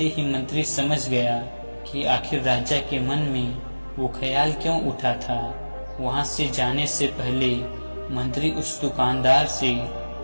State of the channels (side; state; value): both; inverted; correlation -1.00